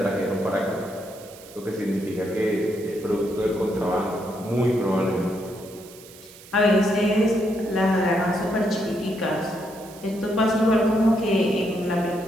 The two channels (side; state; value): right; noise; hiss, 20 dB below the sound